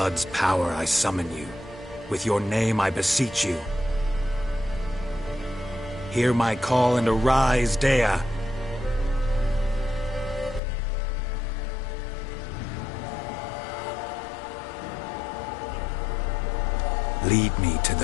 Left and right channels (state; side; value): drops out; right; at 10.6 s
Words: power I summon you. With your name I beseech you. Hear my call and arise, Daya. Lead me to